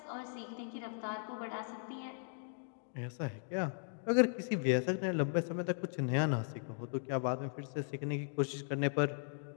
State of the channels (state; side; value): silent; right; digital silence